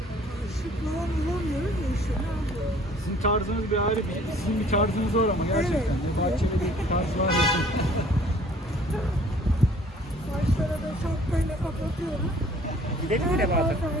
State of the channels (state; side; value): normal; both; correlation 0.55